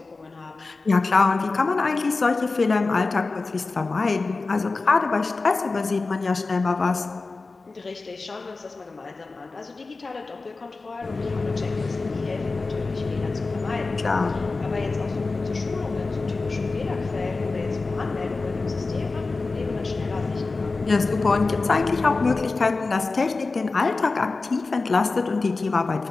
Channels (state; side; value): quieter; right; 3.8 dB